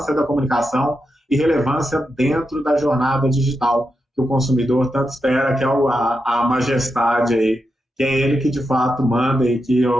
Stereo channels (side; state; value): both; normal; correlation 0.87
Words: da comunicação e relevância dentro da jornada digital que o consumidor tanto espera, que é a majestade aí, que é ele que de fato manda e que